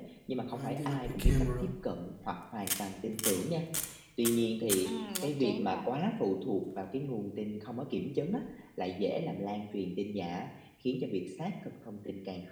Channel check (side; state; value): both; identical; correlation 1.00